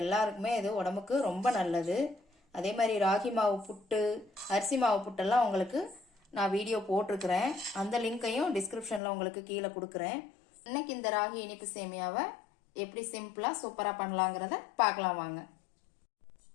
எல்லாருக்குமே இது உடம்புக்கு ரொம்ப நல்லது. அதே மாதிரி ராகி மாவு புட்டு, அரிசி மாவு புட்டெல்லாம் உங்களுக்கு நான் வீடியோ போட்டிருக்கிறேன். அந்த லிங்கையும் டிஸ்கிரிப்ஷன்ல உங்களுக்கு கீழே கொடுக்குறேன். இன்னைக்கு இந்த ராகி இனிப்பு சேமியாவை எப்படி சிம்பிளா சூப்பரா பண்ணலாங்கிறத பார்க்கலாம் வாங்க.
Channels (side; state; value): right; drops out; at 9.0 s